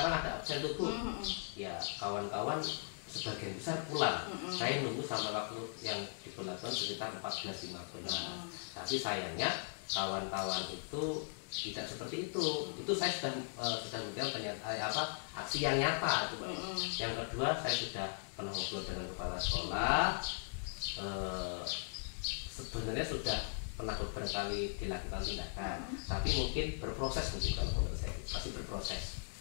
ada absen tuh Bu, ya kawan-kawan sebagian besar pulang. Saya nunggu sampai waktu yang diberlakukan sekitar 14.15. Tapi sayangnya kawan-kawan itu tidak seperti itu. Itu saya sudah memberikan aksi yang nyata itu Pak. Yang kedua, saya sudah pernah ngobrol dengan kepala sekolah. Sebenarnya sudah pernah beberapa kali dilakukan tindakan, tapi mungkin berproses mungkin kalau menurut saya masih berproses.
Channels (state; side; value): silent; right; digital silence